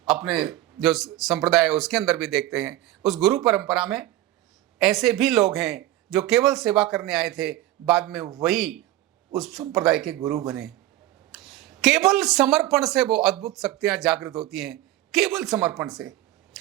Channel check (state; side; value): quieter; left; 14.9 dB